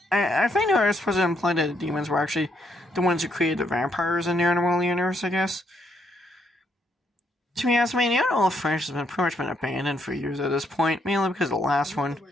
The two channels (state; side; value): normal; both; correlation 0.74